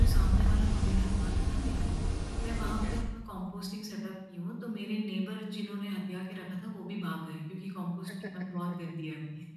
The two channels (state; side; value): identical; both; correlation 1.00